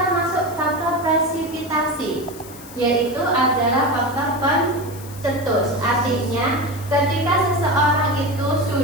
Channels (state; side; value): noise; left; hiss, 18 dB below the sound